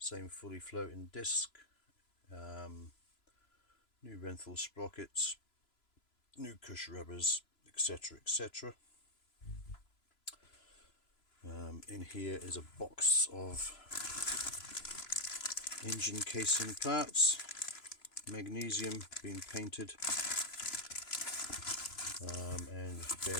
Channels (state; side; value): late; right; 3.0 ms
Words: fully floating disc, new Renthal sprockets, new cush rubbers, etc, etc. In here is a box of engine casing parts, magnesium being painted, and